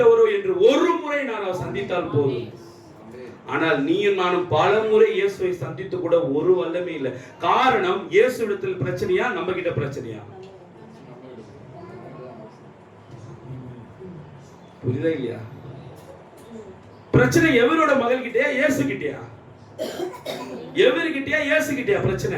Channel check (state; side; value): identical; both; correlation 1.00